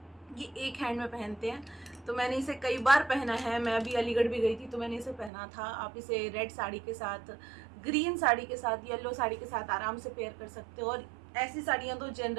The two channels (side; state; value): left; drops out; at 5.3 s